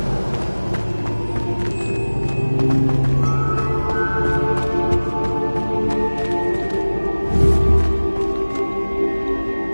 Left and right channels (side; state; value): both; inverted; correlation -1.00